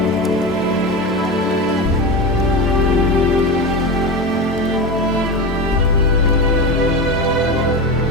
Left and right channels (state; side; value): normal; both; correlation 0.22